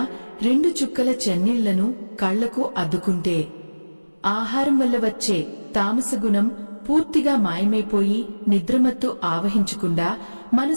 2 చుక్కల చన్నీళ్లను కళ్లకు అద్దుకుంటే ఆహారం వల్ల వచ్చే తామస గుణం పూర్తిగా మాయమైపోయి నిద్రమత్తు ఆవహించకుండా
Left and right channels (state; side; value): inverted; both; correlation -1.00